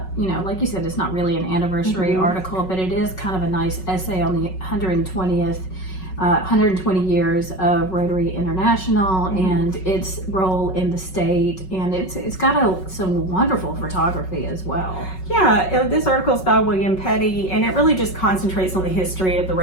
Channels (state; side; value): late; right; 5.4 ms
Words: like you said, it's not really an anniversary article, but it is kind of a nice essay on the 120 years of Rotary International and its role in the state, and it's got some wonderful photography as well. Yeah, this article is by William Petty, and it really just concentrates on the history of the